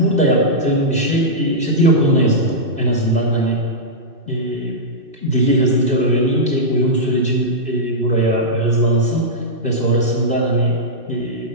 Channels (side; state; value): left; late; 2.6 ms